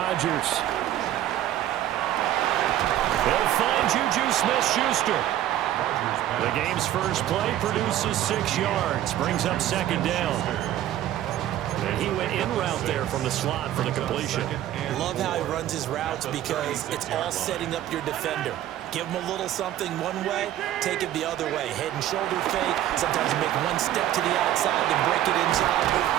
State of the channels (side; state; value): left; quieter; 12.6 dB